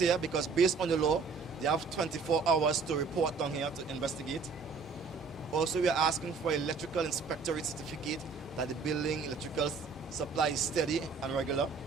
because based on the law, they have 24 hours to report down here to investigate. Also, we are asking for electrical inspectorate certificate that the building electrical supply is steady and regular,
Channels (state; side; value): quieter; left; 4.8 dB